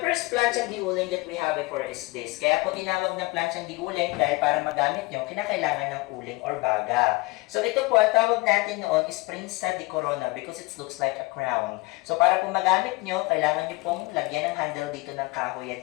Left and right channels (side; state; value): right; quieter; 24.1 dB